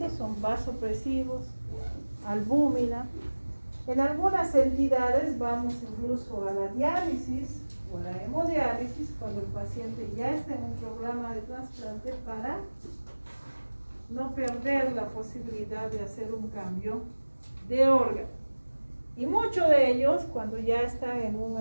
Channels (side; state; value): both; inverted; correlation -1.00